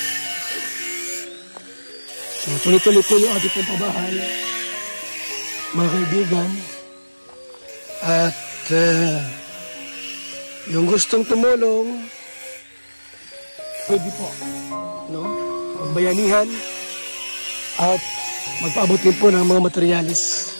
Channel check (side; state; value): both; inverted; correlation -1.00